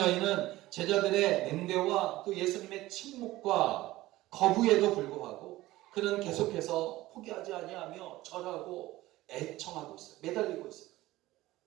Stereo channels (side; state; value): left; quieter; 17.2 dB